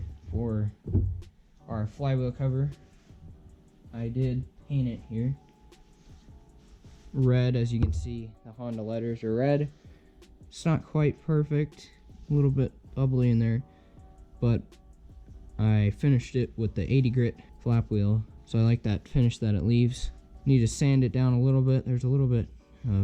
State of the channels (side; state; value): both; identical; correlation 1.00